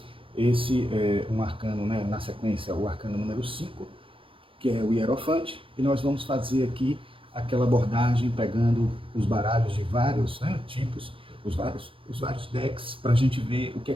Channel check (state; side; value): late; left; 0.25 ms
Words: Esse é um arcano, né, na sequência, o arcano número 5, que é o Hierofante, e nós vamos fazer aqui aquela abordagem pegando os baralhos de vários, né, tipos, os vários decks, para a gente ver o que é